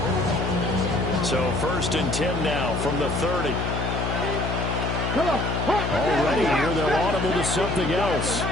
So 1st and 10 now from the 30. Already here, they're audible to something else.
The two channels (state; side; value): noise; left; hum, 1 dB below the sound